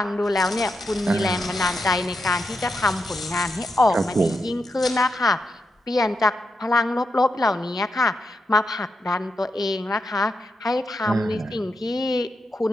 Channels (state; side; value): normal; both; correlation 0.85